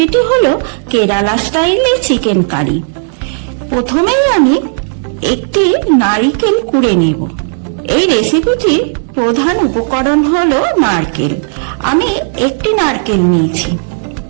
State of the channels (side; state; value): left; silent; digital silence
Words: হলো কেরালা স্টাইলে চিকেন কারি। প্রথমেই আমি একটি নারকেল কুড়ে নেব। এই রেসিপিটির প্রধান উপকরণ হলো নারকেল। আমি একটি নারকেল নিয়েছি।